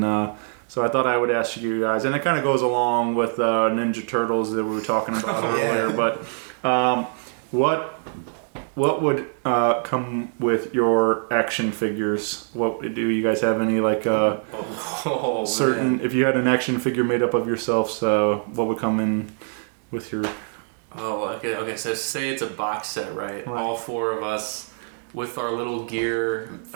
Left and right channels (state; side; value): silent; left; 63 dB below the other